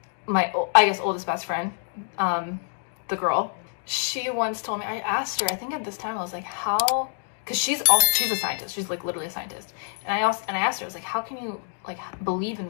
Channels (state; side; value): silent; right; digital silence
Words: I guess oldest best friend, the girl, she once told me, I asked her, I think at this time I was like, how, because she's a scientist, she's like literally a scientist. And I asked her, I was like, how can you like believe in